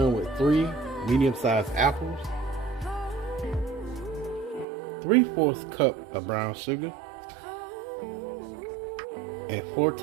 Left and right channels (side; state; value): left; drops out; at 4.7 s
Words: with 3 medium-sized apples, 3/4 cup of brown sugar, and 4